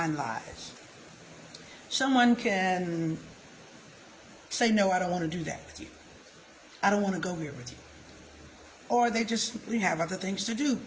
lies. Someone can say, no, I don't want to do that with you. I don't want to go here with you. Or they just simply have other things to do,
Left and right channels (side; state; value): both; identical; correlation 1.00